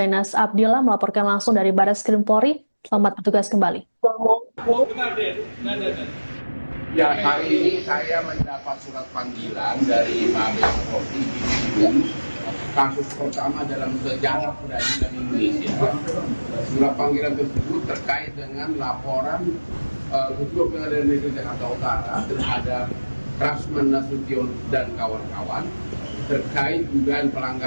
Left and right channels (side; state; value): both; inverted; correlation -1.00